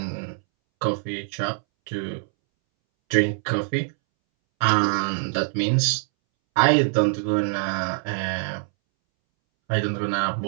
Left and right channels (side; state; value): left; silent; 63 dB below the other